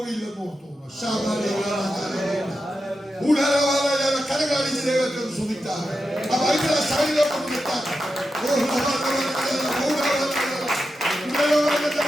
ഓർത്തു. കരകാണിച്ച് ദൈവത്തെ സുഖിച്ചാൽ ആ ബൈബിളെ സൈഡിലോട്ട് നിർത്താൻ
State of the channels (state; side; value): normal; both; correlation 0.89